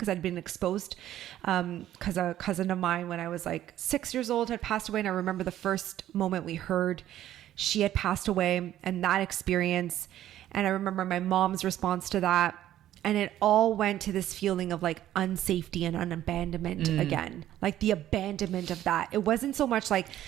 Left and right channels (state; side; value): quieter; left; 12.6 dB